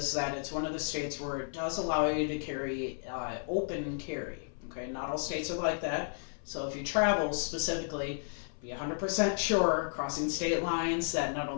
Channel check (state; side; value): silent; right; 56 dB below the other